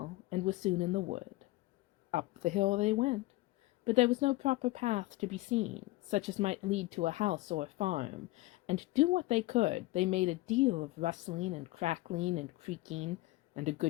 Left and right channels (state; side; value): quieter; right; 19.3 dB